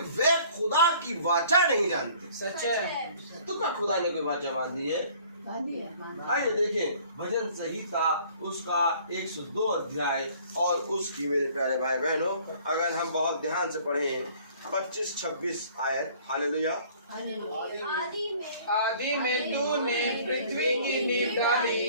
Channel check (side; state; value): both; inverted; correlation -0.54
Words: वे खुदा की वाचा नहीं जानते। सच है। तो क्या खुदा ने कोई वाचा बांधी है? आइए देखें भजन संहिता उसका 102 अध्याय और उसकी मेरे प्यारे भाई बहनों अगर हम बहुत ध्यान से पढ़ें 25-26 आयत। हालेलुया। आदि में तूने पृथ्वी की नींव